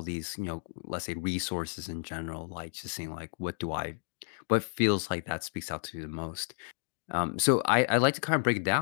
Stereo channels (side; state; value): right; silent; digital silence